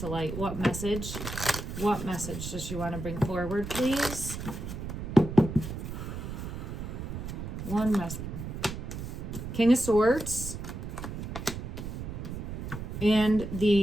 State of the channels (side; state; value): right; noise; rumble, 6 dB below the sound